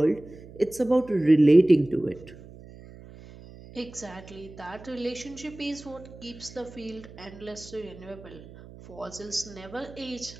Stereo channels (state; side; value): noise; right; hum, 18 dB below the sound